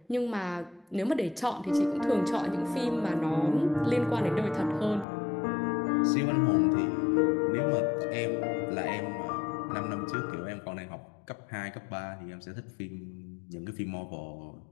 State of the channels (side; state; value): right; drops out; at 5.1 s